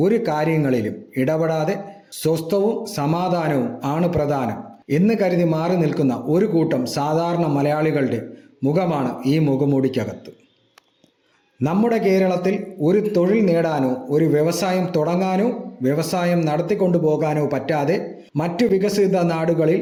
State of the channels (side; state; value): both; identical; correlation 1.00